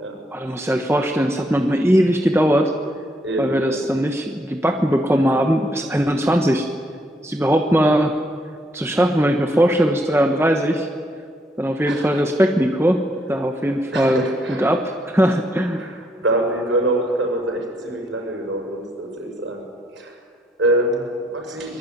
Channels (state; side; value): normal; both; correlation 0.74